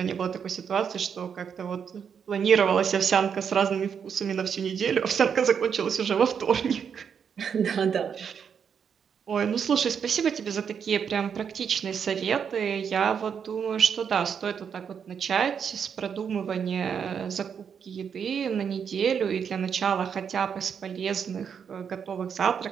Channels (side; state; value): left; quieter; 7.2 dB